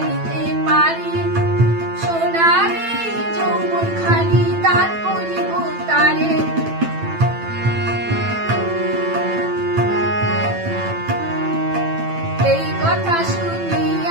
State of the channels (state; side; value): late; left; 9.0 ms